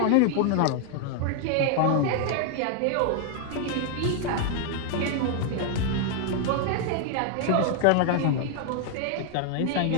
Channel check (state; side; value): different; both; correlation 0.00